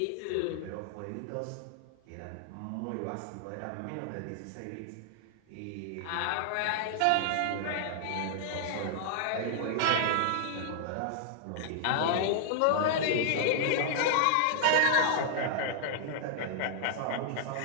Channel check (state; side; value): different; both; correlation -0.01